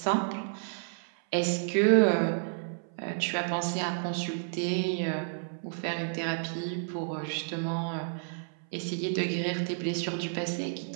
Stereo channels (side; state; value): left; silent; 57 dB below the other